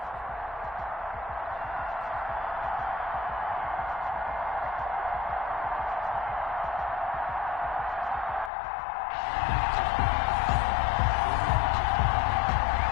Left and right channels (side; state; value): right; drops out; at 8.5 s